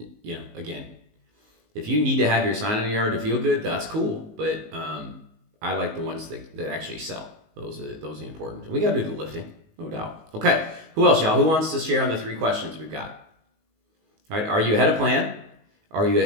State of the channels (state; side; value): late; left; 19 ms